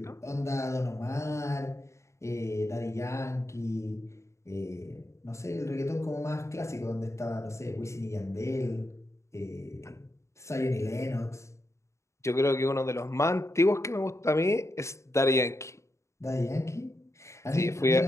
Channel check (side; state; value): right; late; 0.14 ms